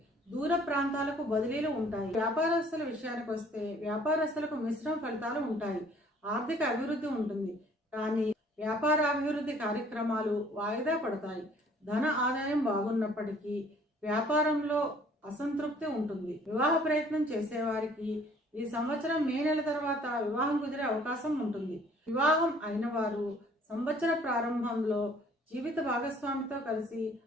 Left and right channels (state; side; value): normal; both; correlation 0.57